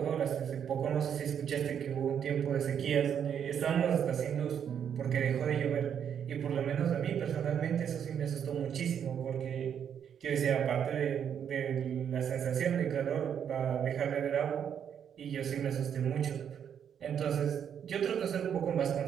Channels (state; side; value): quieter; left; 8.4 dB